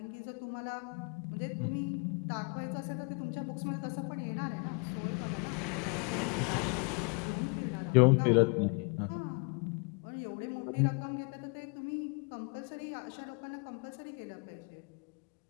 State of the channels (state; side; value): quieter; right; 36.1 dB